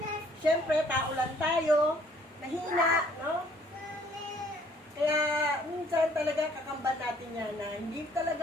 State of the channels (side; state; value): both; normal; correlation 0.60